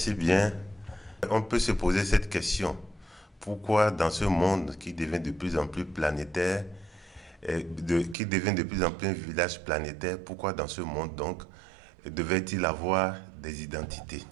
bien. On peut se poser cette question. Pourquoi dans ce monde qui devient de plus en plus planétaire, qui devient de plus en plus un village planétaire, pourquoi dans ce monde donc devait-il avoir des identités?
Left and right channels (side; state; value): left; drops out; at 8.2 s